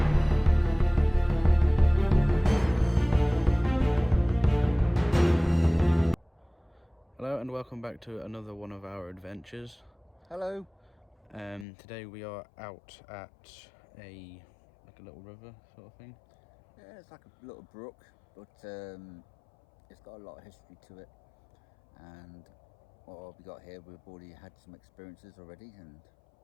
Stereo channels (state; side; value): drops out; right; at 11.7 s